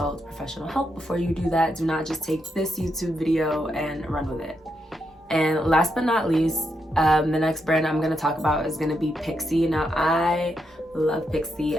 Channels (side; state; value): both; normal; correlation 0.82